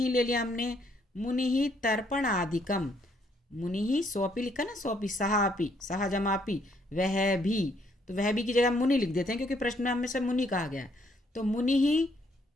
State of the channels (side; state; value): both; normal; correlation 0.69